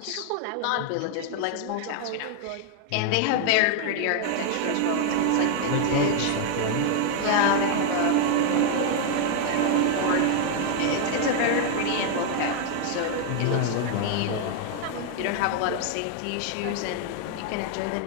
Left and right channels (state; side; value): different; both; correlation 0.00